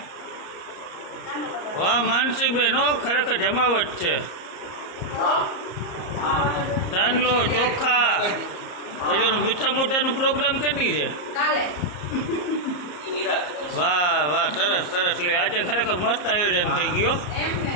વાહ માનસી બેન હો ખરેખર જમાવટ છે ચાંદલો ચોખા પછી ઓલું મીઠા મોટાનો પ્રોગ્રામ કરી છે કાલે વાહ વાહ સરસ સરસ લે આજે ખરેખર મસ્ત આયોજન થઈ ગયો એમ ને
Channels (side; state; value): right; late; 34 ms